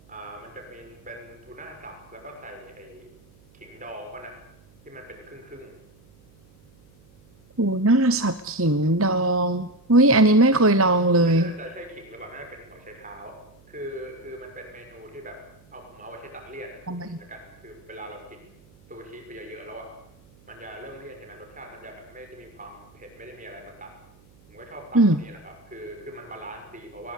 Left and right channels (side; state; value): right; noise; hum, 27 dB below the sound